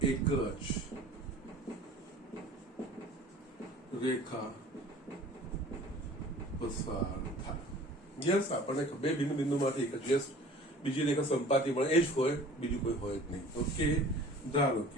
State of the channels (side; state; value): both; normal; correlation 0.46